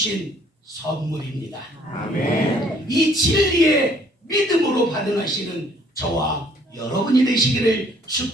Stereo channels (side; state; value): both; normal; correlation 0.61